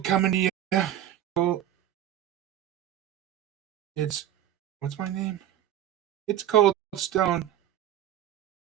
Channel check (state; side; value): quieter; left; 11.7 dB